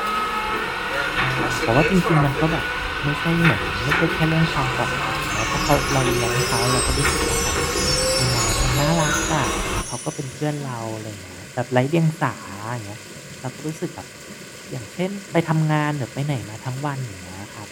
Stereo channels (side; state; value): both; identical; correlation 1.00